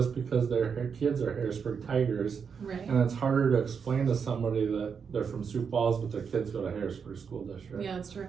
because their kids are Harrisburg Tigers. Right. And it's harder to explain to somebody that they're from Sioux Falls, but their kids go to Harrisburg School District. Yeah, that's true.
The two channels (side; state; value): left; quieter; 6.4 dB